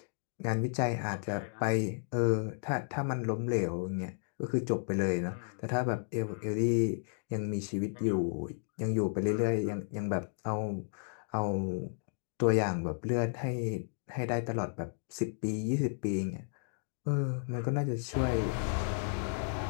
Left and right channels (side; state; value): right; silent; digital silence